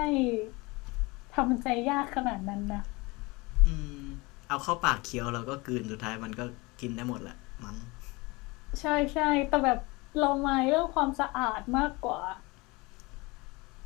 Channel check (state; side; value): quieter; right; 24.6 dB